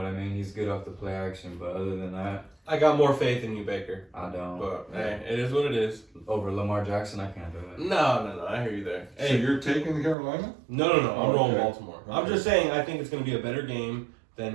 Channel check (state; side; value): drops out; left; at 10.2 s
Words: I mean? He's good off the play action, but other than that, I got more faith in you, Baker. I don't. But hey, it is what it is. Over Lamar Jackson, I can't do it. No. I hear you there. So Hey, you're taking Carolina? no. I'm rolling Okay. Baltimore. I'm Okay. just saying I think it's going to be a better game